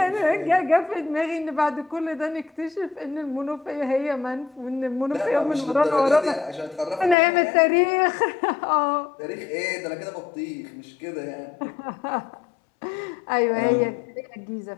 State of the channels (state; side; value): drops out; right; at 7.2 s